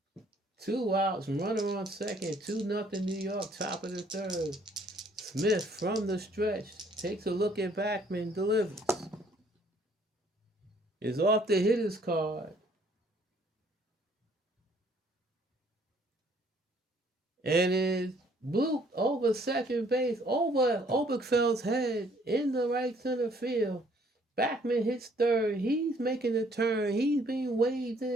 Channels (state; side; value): normal; both; correlation 0.62